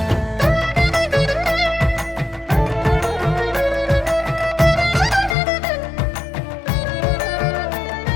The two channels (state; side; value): drops out; right; at 5.4 s